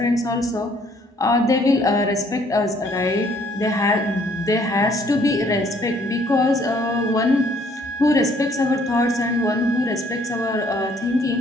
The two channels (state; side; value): normal; both; correlation 0.63